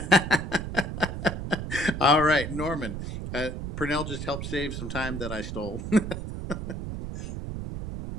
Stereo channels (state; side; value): noise; right; rumble, 5 dB below the sound